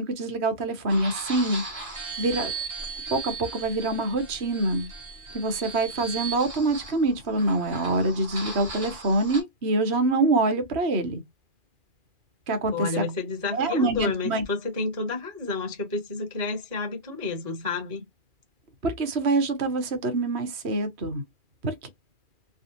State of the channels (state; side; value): late; left; 2.4 ms